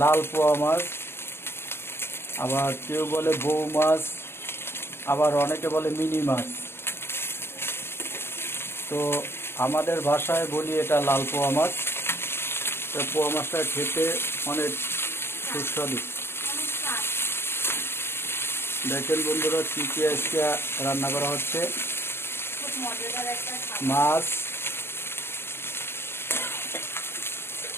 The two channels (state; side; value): late; right; 0.12 ms